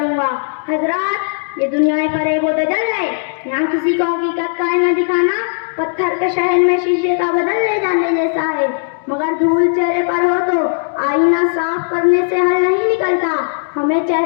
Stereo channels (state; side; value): silent; right; digital silence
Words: گا۔ حضرات، یہ دنیا فریب و دجل ہے، یہاں کسی کو حقیقت کا آئینہ دکھانا پتھر کے شہر میں شیشے کا بدل لے جانے جیسا ہے، مگر دھول چہرے پر ہو تو آئینہ صاف کرنے سے حل نہیں نکلتا، ہمیں